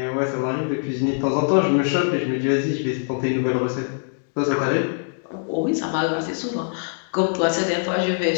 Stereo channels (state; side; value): silent; right; digital silence